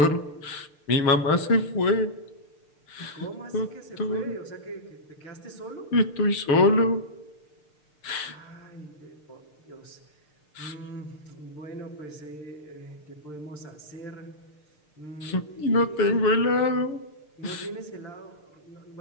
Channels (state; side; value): late; right; 6.6 ms